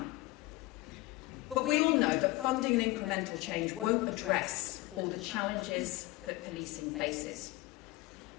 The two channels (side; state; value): right; quieter; 20.2 dB